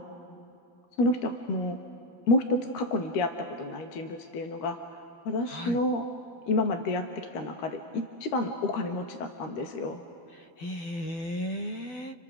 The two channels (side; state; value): right; late; 12 ms